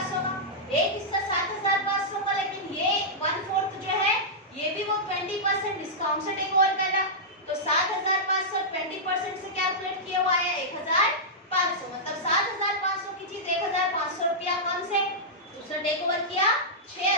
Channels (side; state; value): both; normal; correlation -0.11